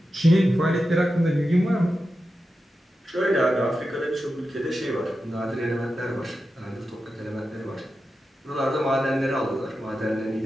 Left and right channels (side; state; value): both; normal; correlation 0.91